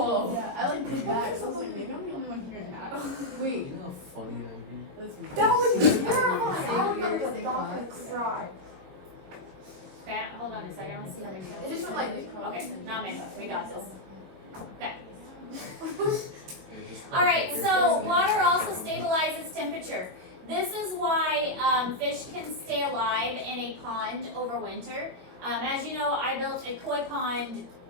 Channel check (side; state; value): left; late; 22 ms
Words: Yeah, I like did that. So I was like, maybe I'm the only one hearing that. Wait. You know how funny that would be? That would be terrifying. Okay, hold on a second. Let's see how many It just went like. Okay, not many. We got this. Okay. Just All right. put So your water also stabilizes temperature. This is why fish can stay alive in a pond over winter. As you know, I built a koi pond